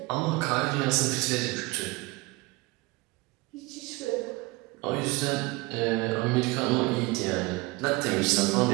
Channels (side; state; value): left; quieter; 23.6 dB